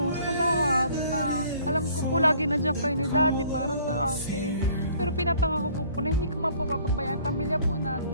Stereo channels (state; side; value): inverted; both; correlation -0.56